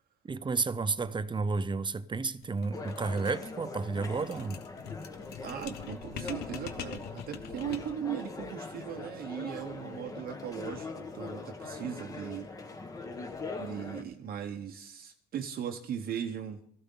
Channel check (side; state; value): left; quieter; 3.4 dB